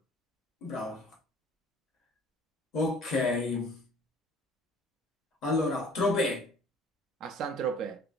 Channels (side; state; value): both; normal; correlation 0.51